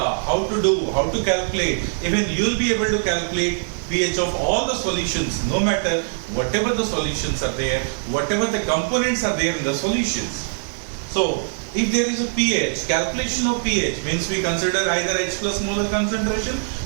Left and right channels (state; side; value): silent; left; digital silence